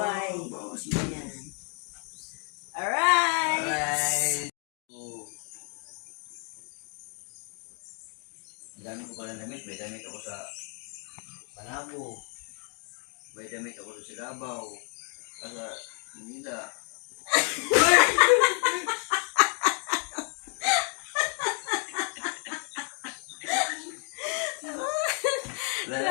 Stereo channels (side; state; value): right; quieter; 37.9 dB